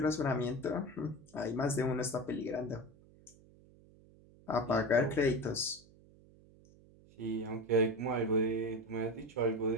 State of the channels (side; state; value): right; noise; hum, 25 dB below the sound